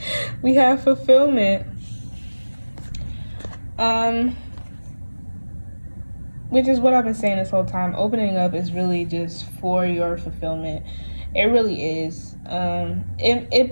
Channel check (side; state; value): both; inverted; correlation -1.00